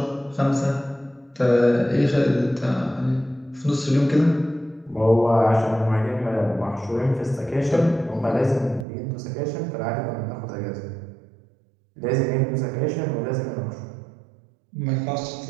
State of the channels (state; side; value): drops out; left; at 8.8 s